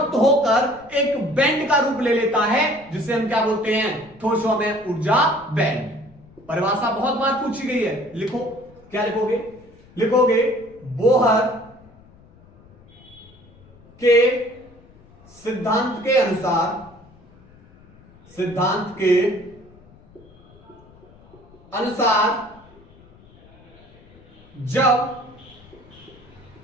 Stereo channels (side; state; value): left; noise; rumble, 26 dB below the sound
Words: होकर एक बैंड का रूप ले लेता है, जिसे हम क्या बोलते हैं? ठोसों में ऊर्जा बैंड। परिभाषा बहुत बार पूछी गई है, लिखो। क्या लिखोगे बोहर के सिद्धांत के अनुसार जब